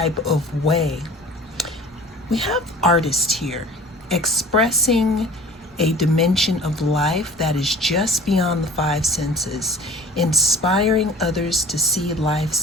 of way. We have artists here expressing a dimension of life that is just beyond the five senses, inspiring others to see life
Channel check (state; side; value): normal; both; correlation 0.45